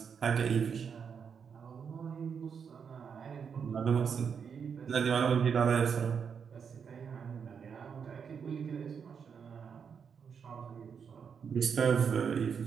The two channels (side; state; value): left; quieter; 6.7 dB